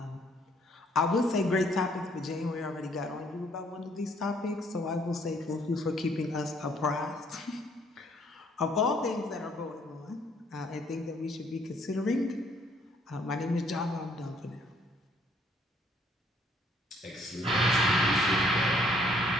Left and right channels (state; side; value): normal; both; correlation 0.64